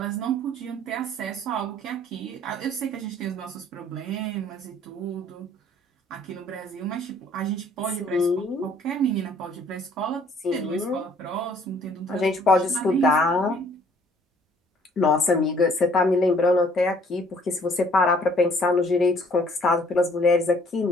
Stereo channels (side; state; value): both; normal; correlation 0.59